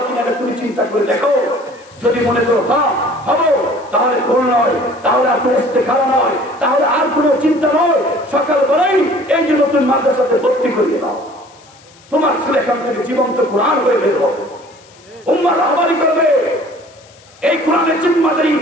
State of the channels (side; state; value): left; noise; hiss, 27 dB below the sound